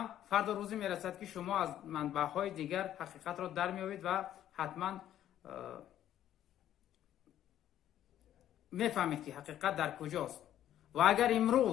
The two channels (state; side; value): quieter; right; 11.6 dB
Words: فردا روزی میرسد که شما از منبع‌های دیگر حقیقت را در میابید و حتما میفهمید که حقیقت در کجاست. و اگر